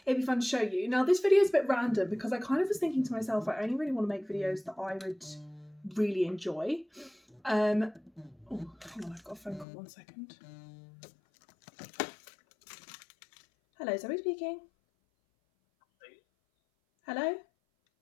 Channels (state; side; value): drops out; right; at 9.7 s